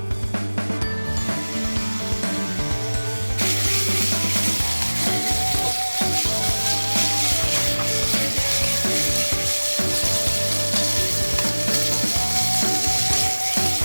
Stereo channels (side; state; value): both; inverted; correlation -1.00